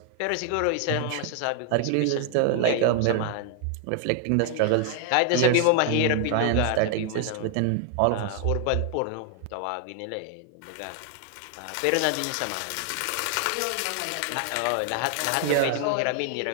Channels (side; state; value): both; different; correlation 0.00